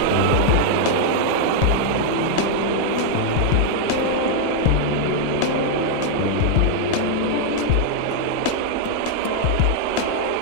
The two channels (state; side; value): different; both; correlation -0.01